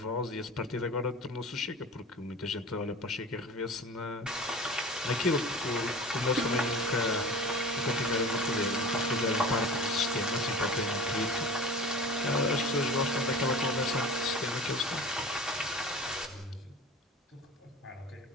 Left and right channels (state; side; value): normal; both; correlation 0.37